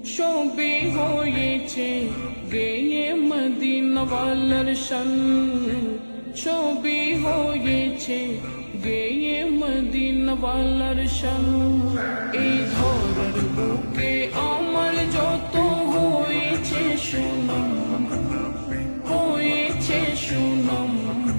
সবই হয়েছে গেয়ে মদিনাওয়ালার শান, সবই হয়েছে গেয়ে মদিনাওয়ালার শান। এই ধরার বুকে আমার যত হয়েছে সুনাম, হয়েছে সুনাম,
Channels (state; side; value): inverted; both; correlation -1.00